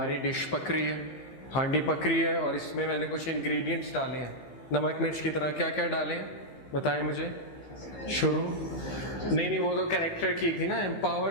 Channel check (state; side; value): late; right; 15 ms